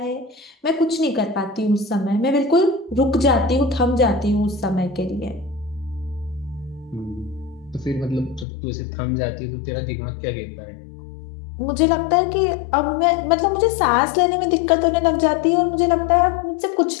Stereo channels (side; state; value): right; drops out; at 8.5 s